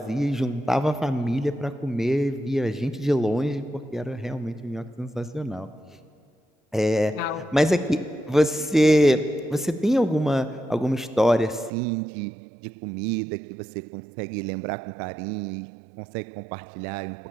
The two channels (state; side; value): drops out; left; at 11.7 s